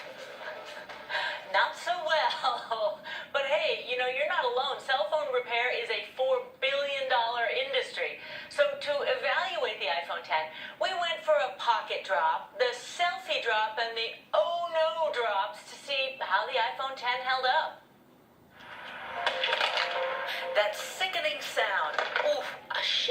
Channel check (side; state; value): both; identical; correlation 1.00